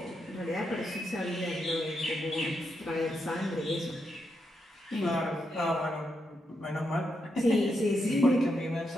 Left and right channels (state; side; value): normal; both; correlation 0.82